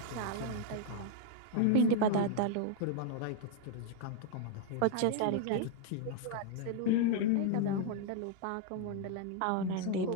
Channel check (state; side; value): different; both; correlation -0.01